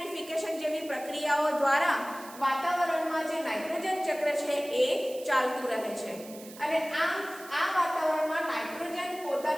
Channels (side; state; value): right; noise; hiss, 17 dB below the sound